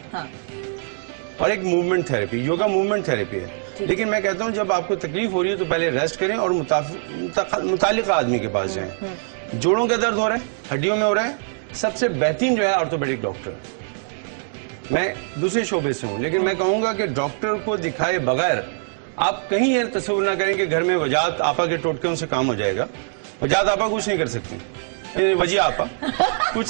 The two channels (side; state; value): left; silent; digital silence